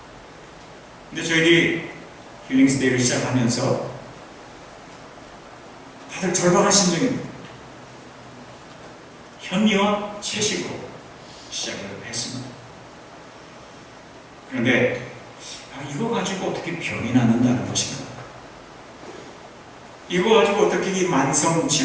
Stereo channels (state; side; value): identical; both; correlation 1.00